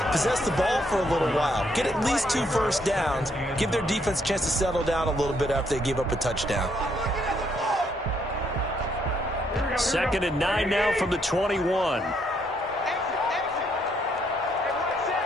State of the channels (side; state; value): both; normal; correlation 0.72